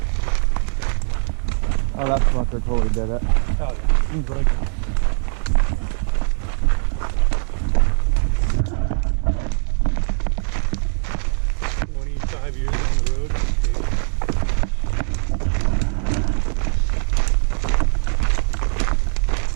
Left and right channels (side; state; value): left; silent; 65 dB below the other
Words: Oh, that's what they're totally dead at. Oh, yeah. Seems like 25 years on the road.